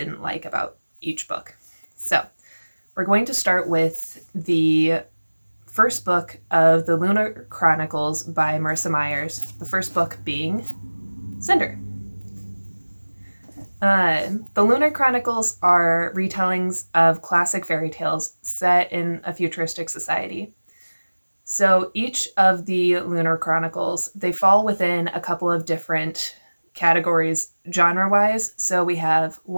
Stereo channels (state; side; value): inverted; both; correlation -1.00